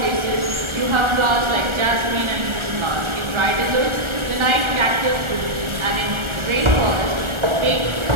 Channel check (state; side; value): late; left; 1.4 ms